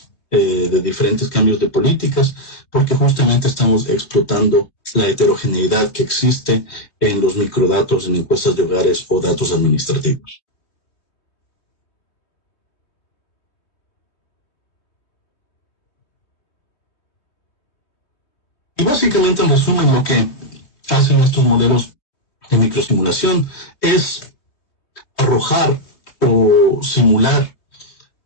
de diferentes cambios de políticas, porque justamente estamos explotando la heterogeneidad que existe en los microdatos, en encuestas de hogares o datos administrativos. Y básicamente, en resumen, lo que hacen estos modelos de microsimulación es arrojar o simular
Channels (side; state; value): right; late; 3.3 ms